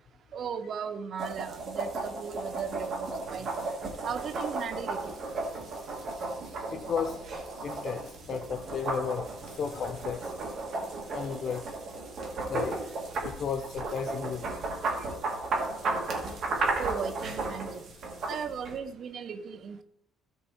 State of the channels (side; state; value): both; normal; correlation 0.65